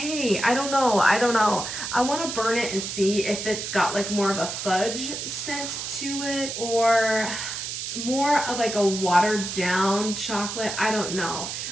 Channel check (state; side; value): noise; right; hiss, 5 dB below the sound